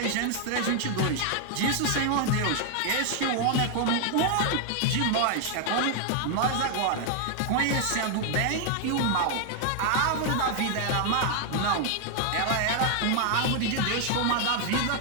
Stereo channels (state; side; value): different; both; correlation 0.00